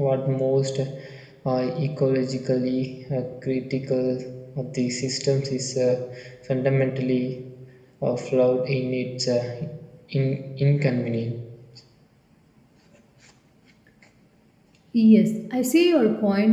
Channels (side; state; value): both; identical; correlation 1.00